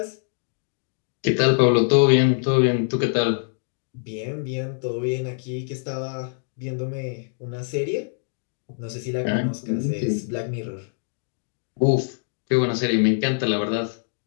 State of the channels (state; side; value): silent; right; digital silence